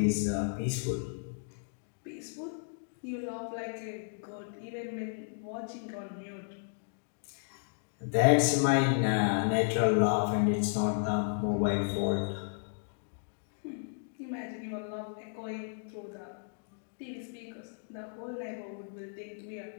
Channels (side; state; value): right; silent; digital silence